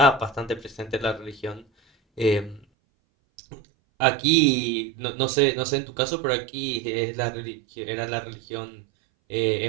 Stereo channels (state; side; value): drops out; left; at 2.7 s